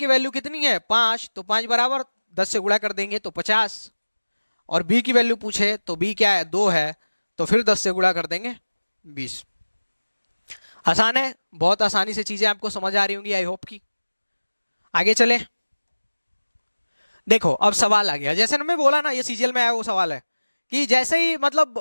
वैल्यू कितनी है 5, तो 5 बराबर 10 से गुणा कर देंगे तो 50, और बी की वैल्यू पूछे तो बी क्या है, 2 है, तो फिर 10 से गुणा कर देंगे 20। आसान है, बहुत आसानी से चीजें आपको समझ आ रही होंगी आई होप की। आगे चले, देखो अब सवाल आ गया, जैसे ना मैं बोला ना ये सीजीएल में आया वो सवाल है कि जैसे ही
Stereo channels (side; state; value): both; inverted; correlation -1.00